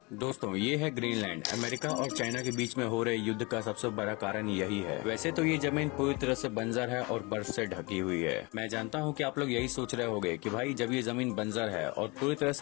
दोस्तों ये है ग्रीनलैंड। अमेरिका और चाइना के बीच में हो रहे युद्ध का सबसे बड़ा कारण यही है। वैसे तो ये जमीन पूरी तरह से बंजर है और बर्फ से ढकी हुई है। मैं जानता हूँ कि आप लोग यही सोच रहे होंगे कि भाई जब ये जमीन बंजर है और पूरी तरह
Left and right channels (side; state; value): right; quieter; 27.1 dB